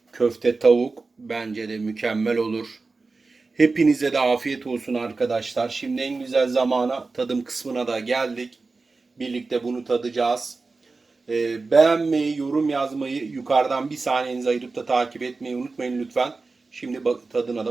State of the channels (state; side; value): quieter; left; 3.9 dB